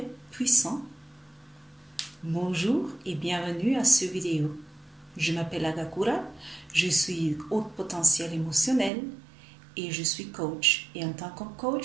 puissant? Bonjour et bienvenue à cette vidéo. Je m'appelle Agakura, je suis haut potentiel émotionnel et je suis coach. Et en tant que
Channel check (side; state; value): left; drops out; at 8.9 s